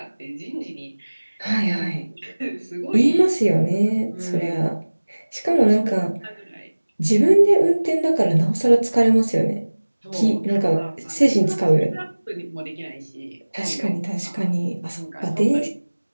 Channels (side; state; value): both; inverted; correlation -1.00